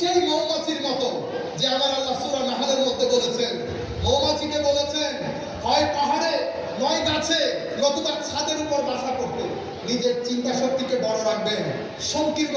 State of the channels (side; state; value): both; identical; correlation 1.00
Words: মৌমাছির মতো যে আমার আল্লাহ সূরা নাহলের মধ্যে বলেছেন, মৌমাছিকে বলেছেন হয় পাহাড়ে নয় গাছে নতুবা ছাদের উপর বাসা করতে। নিজের চিন্তা শক্তিকে বড় রাখবেন, সংকীর্ণ